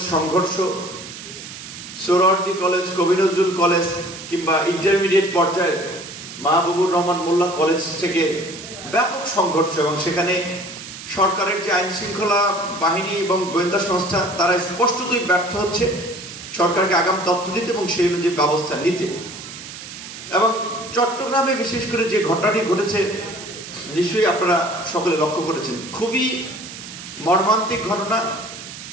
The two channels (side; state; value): right; noise; hiss, 12 dB below the sound